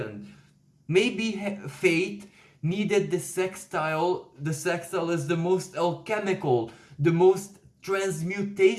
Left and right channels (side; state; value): both; identical; correlation 1.00